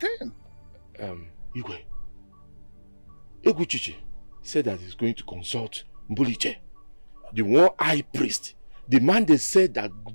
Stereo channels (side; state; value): both; inverted; correlation -1.00